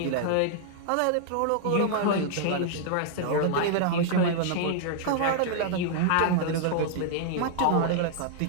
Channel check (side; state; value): both; different; correlation -0.01